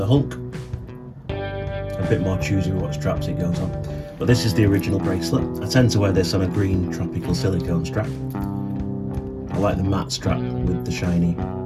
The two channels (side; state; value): both; identical; correlation 1.00